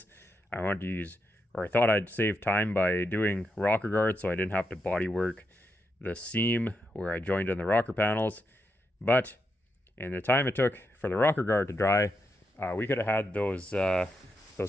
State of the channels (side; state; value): both; normal; correlation 0.84